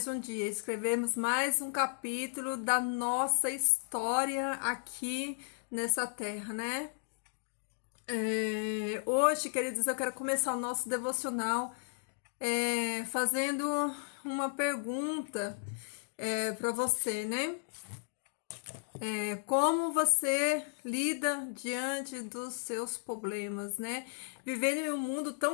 um dia, escrevermos mais um capítulo da nossa história aqui nessa terra, né? Hoje, queridos, eu quero começar o nosso devocional fazendo uma pergunta para você, né? Como você lida diante dos seus problemas, né? Vivendo em um mundo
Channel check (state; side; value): silent; right; digital silence